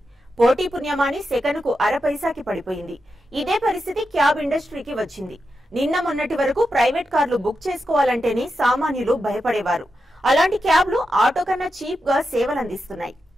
పోటీ పుణ్యమాని సెకనుకు అర పైసాకి పడిపోయింది. ఇదే పరిస్థితి క్యాబ్ ఇండస్ట్రీకి వచ్చింది. నిన్న మొన్నటి వరకు ప్రైవేట్ కార్లు బుక్ చేసుకోవాలంటేనే సామాన్యులు భయపడేవారు. అలాంటి క్యాబ్లు ఆటో కన్నా చీప్ గా సేవలందిస్తున్నాయి.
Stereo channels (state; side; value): normal; both; correlation 0.88